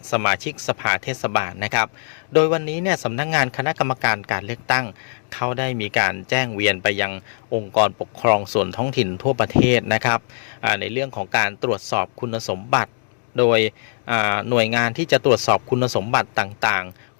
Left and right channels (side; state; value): right; silent; digital silence